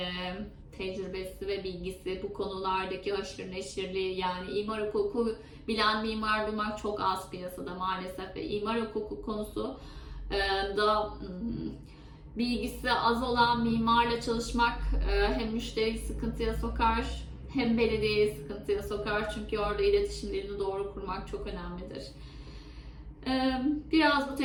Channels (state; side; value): identical; both; correlation 1.00